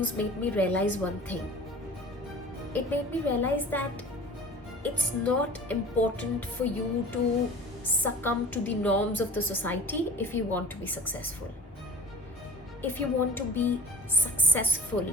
made me realize one thing. It made me realize that it's not important for you to succumb to the norms of the society if you want to be successful. If you want to be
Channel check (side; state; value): both; normal; correlation 0.42